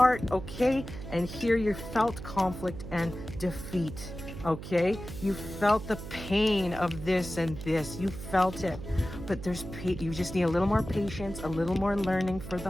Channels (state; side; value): noise; right; hum, 10 dB below the sound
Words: okay? And here you felt conflict and defeat, okay? You felt the pain of this and this. You felt it. But you just need a little more patience, a little more learning for the